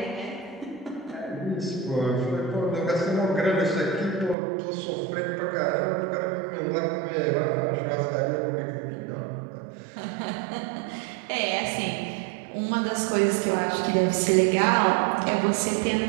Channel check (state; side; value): drops out; left; at 4.4 s